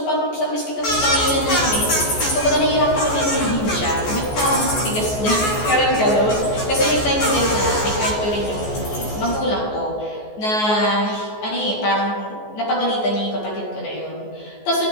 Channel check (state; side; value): late; right; 14 ms